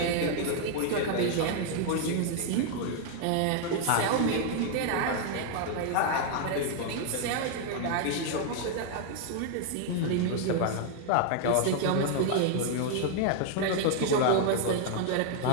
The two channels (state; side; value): different; both; correlation 0.00